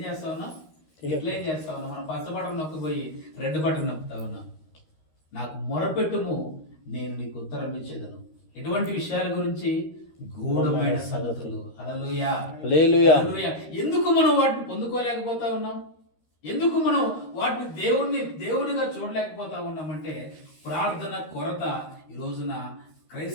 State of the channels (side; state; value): right; late; 13 ms